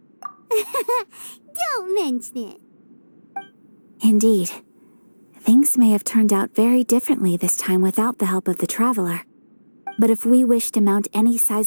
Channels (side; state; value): both; inverted; correlation -1.00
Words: Don't mention it. Indeed. Things may have turned out very differently this time without the help of the Traveler. But if we wish to mount any